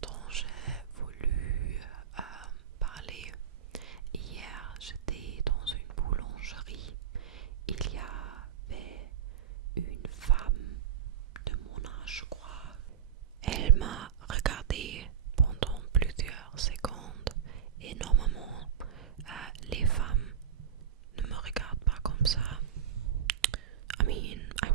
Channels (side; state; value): left; quieter; 9.1 dB